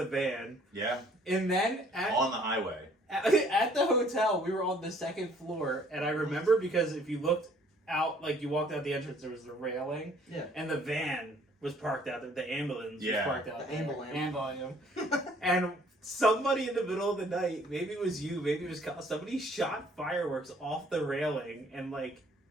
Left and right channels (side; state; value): both; normal; correlation 0.59